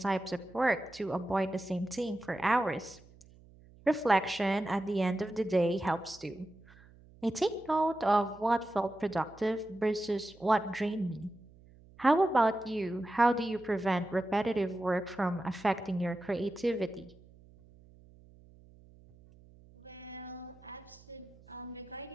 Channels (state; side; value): noise; right; hum, 24 dB below the sound